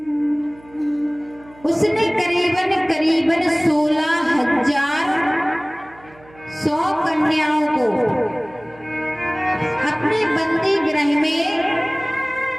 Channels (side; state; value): right; noise; hum, 25 dB below the sound